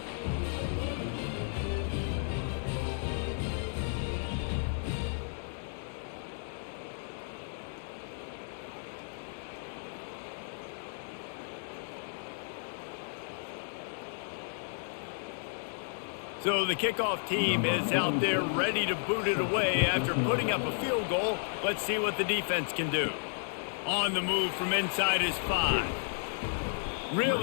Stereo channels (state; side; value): silent; right; digital silence